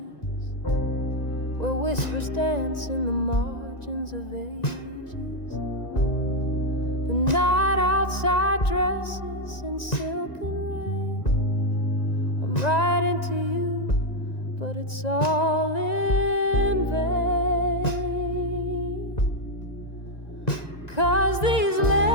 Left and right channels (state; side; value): late; right; 1.9 ms